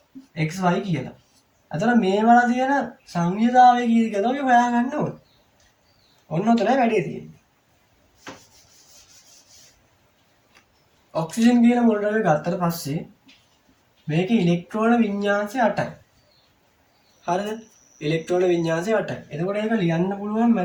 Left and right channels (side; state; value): both; identical; correlation 1.00